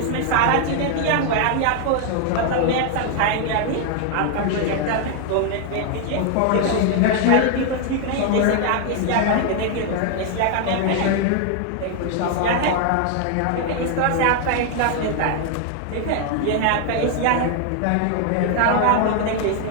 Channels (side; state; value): both; different; correlation 0.00